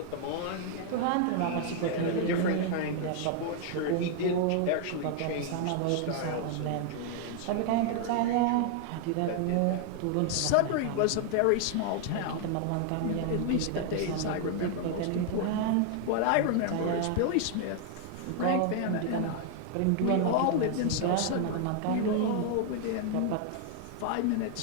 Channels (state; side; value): different; both; correlation 0.00